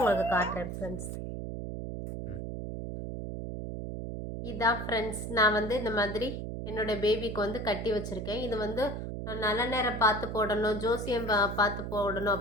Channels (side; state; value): right; noise; hum, 6 dB below the sound